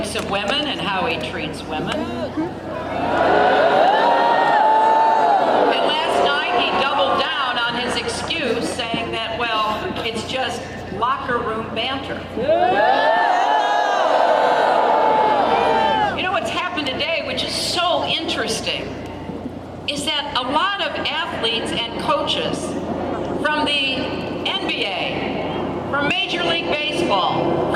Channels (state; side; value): identical; both; correlation 1.00